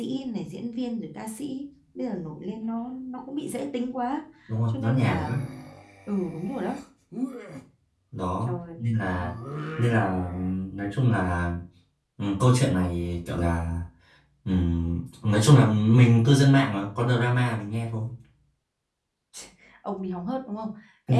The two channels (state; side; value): identical; both; correlation 1.00